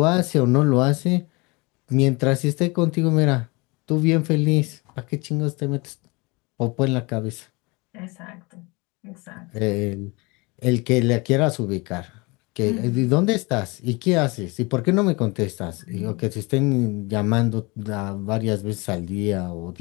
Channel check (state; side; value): quieter; right; 26.7 dB